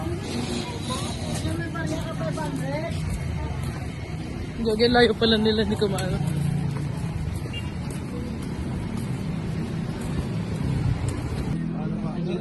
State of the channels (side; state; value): both; identical; correlation 1.00